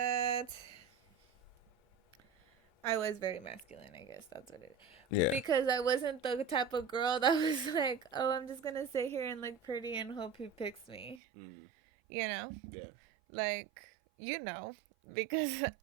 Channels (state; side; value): drops out; left; at 11.2 s